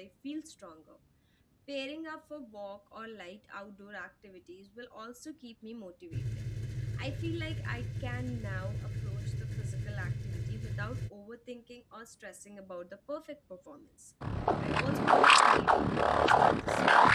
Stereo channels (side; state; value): both; identical; correlation 1.00